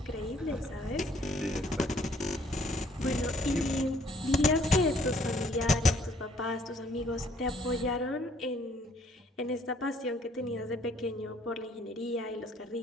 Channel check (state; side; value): normal; both; correlation 0.62